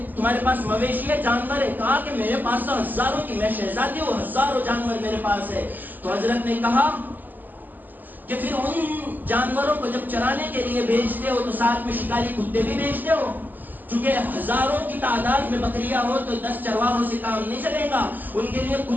تمہارے پاس مویشی ہے, جانور ہے؟ کہا کہ میرے پاس تو ہزاروں کی, میں شہزادی ہوں, ہزاروں جانور میرے پاس ہے. تو حضرت نے کہا کہ پھر ان جانوروں کو جب چرانے کے لیے بھیجتے ہو تو ساتھ میں شکاری کتے بھی بھیجتے ہو؟ چونکہ ہزاروں کی تعداد میں بکریاں ہو تو 10 چرواہوں سے کام نہیں چلے گا. ان کے لیے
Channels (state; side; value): late; left; 0.086 ms